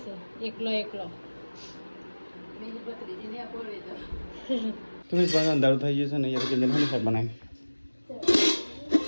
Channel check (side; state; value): both; inverted; correlation -1.00